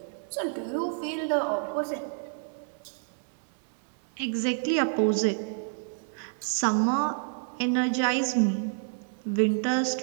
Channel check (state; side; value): silent; left; digital silence